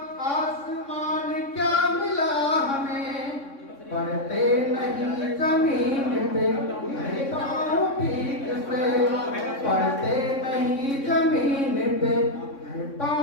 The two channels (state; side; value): late; right; 3.6 ms